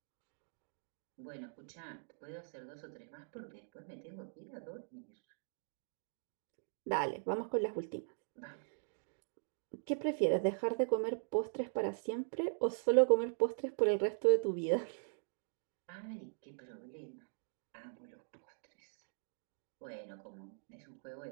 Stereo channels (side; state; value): left; silent; digital silence